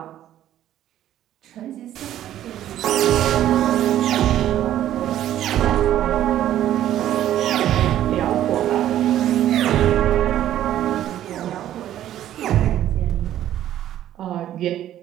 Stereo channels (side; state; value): left; quieter; 12.1 dB